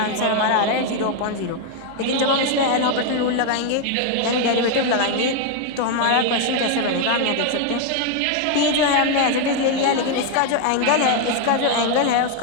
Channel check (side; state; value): both; different; correlation 0.01